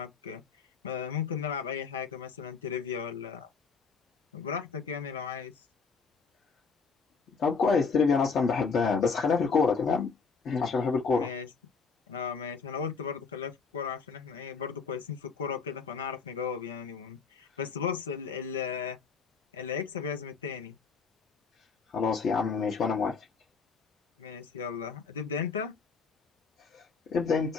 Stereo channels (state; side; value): quieter; right; 5.2 dB